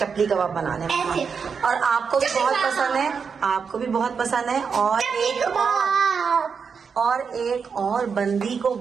कबाब बनाने में। और आपको भी बहुत पसंद है, आपको भी बहुत पसंद है। और एक और बंदी को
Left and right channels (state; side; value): quieter; left; 6.0 dB